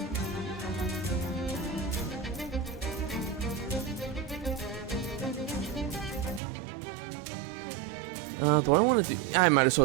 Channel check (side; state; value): left; drops out; at 6.4 s